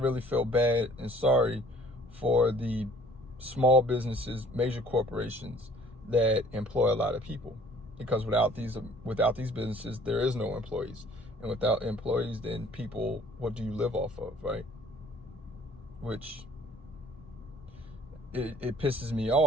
feel bad and sorry for the small businesses, major corporations that employ a lot of people. Because without these businesses, there is no employees. And without employees, then people, what do you live off of, right? Which, it pisses me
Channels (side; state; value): both; normal; correlation 0.54